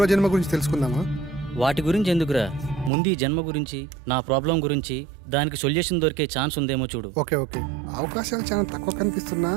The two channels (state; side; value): drops out; left; at 2.9 s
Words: గురించి తెలుసుకుందామా? వాటి గురించి ఎందుకురా, ముందు ఈ జన్మ గురించి, నా ప్రాబ్లం గురించి, దానికి సొల్యూషన్ దొరికే ఛాన్స్ ఉందేమో చూడు. ఓకే ఓకే, అవకాశాలు చాలా తక్కువ కనిపిస్తున్నా